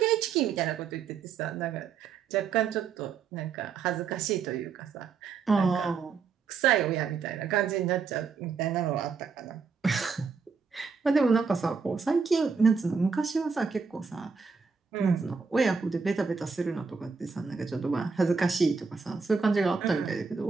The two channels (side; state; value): left; quieter; 5.4 dB